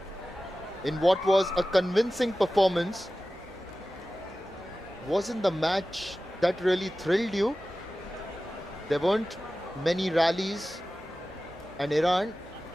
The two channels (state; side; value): normal; both; correlation 0.95